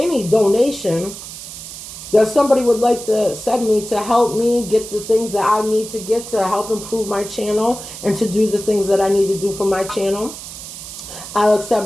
donation that somebody would like to send me to help me get the things that I need to get to help improve my channel and to do the things that I need to do for my channel. I'll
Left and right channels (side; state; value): right; noise; hiss, 12 dB below the sound